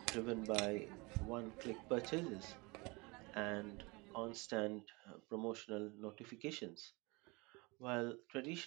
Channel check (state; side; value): quieter; left; 26.3 dB